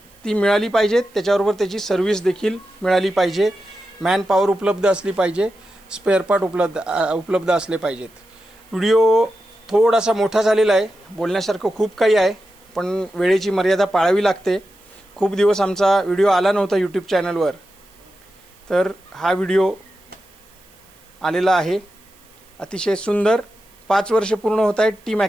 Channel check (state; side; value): noise; right; hiss, 29 dB below the sound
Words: ती मिळाली पाहिजेत. त्याच्याबरोबर त्याची सर्व्हिस देखील मिळाली पाहिजे. मॅन पॉवर उपलब्ध असली पाहिजे. स्पेअर पार्ट उपलब्ध असले पाहिजेत. व्हिडिओ थोडासा मोठा झालेला आहे, बोलण्यासारखं खूप काही आहे, पण वेळेची मर्यादा पाळावी लागते. खूप दिवस आमचा व्हिडिओ आला नव्हता यूट्यूब चॅनलवर, तर हा व्हिडिओ आलेला आहे. अतिशय सुंदर. 5 वर्ष पूर्ण होत आहेत टीम